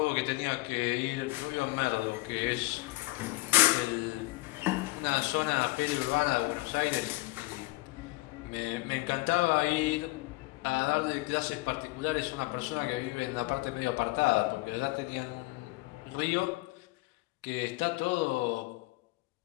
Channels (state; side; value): quieter; right; 21.9 dB